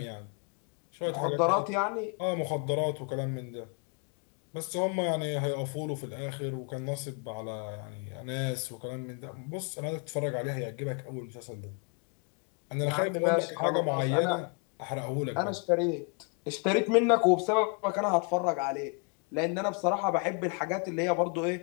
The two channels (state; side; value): quieter; right; 37.5 dB